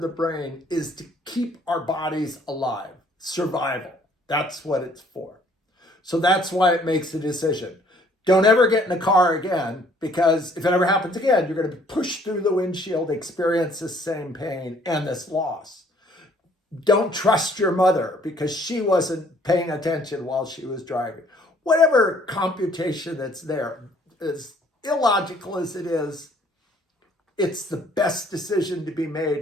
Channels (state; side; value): normal; both; correlation 0.60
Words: brain is to keep our bodies alive. Survival. That's what it's for. So that's why it makes a decision. Don't ever get in a car again, because if it ever happens again, you're going to be pushed through the windshield, experience the same pain and this loss. Don't trust your mother because she wasn't paying attention while she was driving. Whatever computation that's there, as illogical as it is, it's the best decision to be